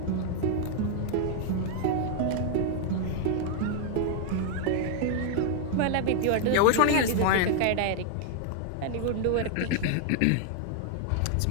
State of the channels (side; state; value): both; different; correlation 0.00